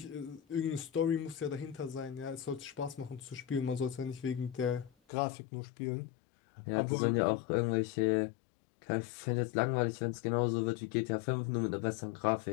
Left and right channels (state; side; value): drops out; right; at 4.9 s